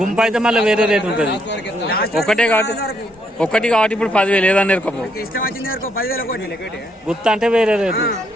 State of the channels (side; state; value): both; normal; correlation 0.73